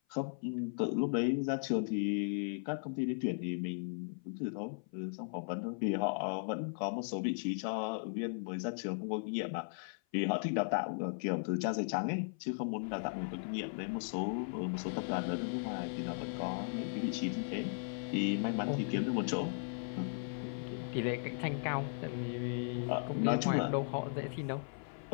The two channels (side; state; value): right; silent; 53 dB below the other